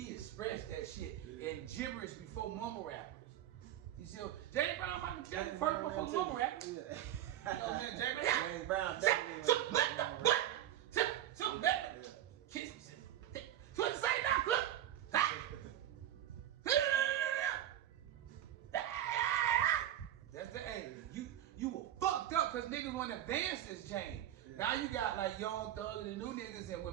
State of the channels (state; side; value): quieter; left; 11.9 dB